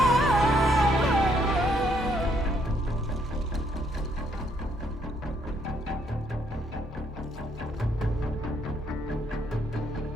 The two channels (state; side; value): normal; both; correlation 0.70